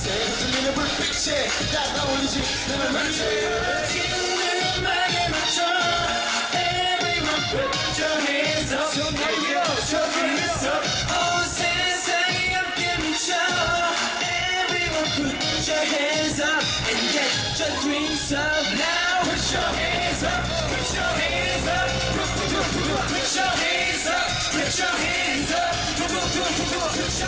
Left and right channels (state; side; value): identical; both; correlation 1.00